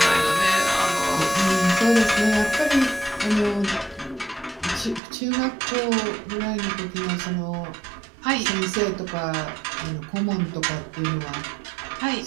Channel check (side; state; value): left; drops out; at 5.0 s